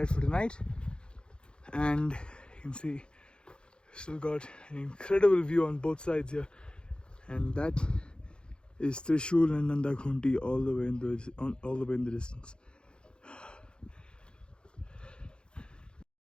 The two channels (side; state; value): right; late; 0.052 ms